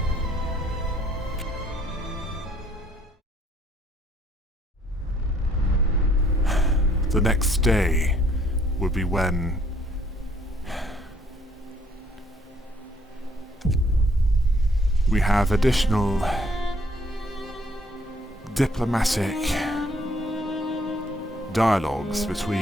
wait. The next day would be when we have additional diplomatic dialogues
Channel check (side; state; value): both; normal; correlation 0.64